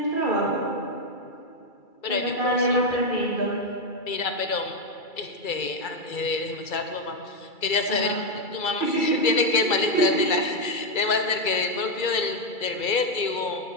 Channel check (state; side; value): late; right; 2.3 ms